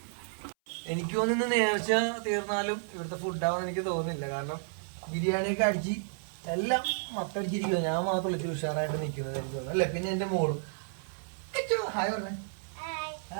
എനിക്ക് തോന്നുന്നു നേർച്ച തീർന്നാലും ഇവിടുത്തെ ഫുഡാവുമെന്ന് എനിക്ക് തോന്നുന്നില്ല. കാരണം ബിരിയാണിയൊക്കെ അടിച്ച് എല്ലാം മത്തടിച്ചിരിക്കുക. ഞാൻ മാത്രമല്ല ഇച്ചിരി ഉഷാറായിട്ട് നിൽക്കുന്നത് എനിക്ക് തോന്നുന്നു അല്ലേ. പിന്നെ എന്റെ മോളും ഹായ് പറഞ്ഞേ.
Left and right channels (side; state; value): left; silent; 57 dB below the other